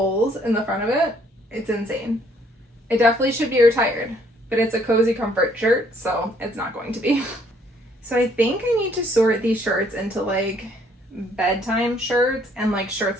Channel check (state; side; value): normal; both; correlation 0.65